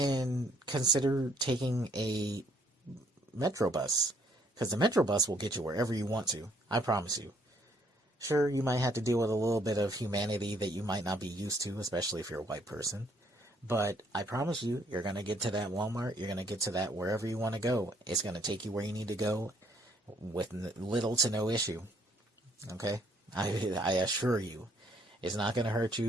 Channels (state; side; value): normal; both; correlation 0.66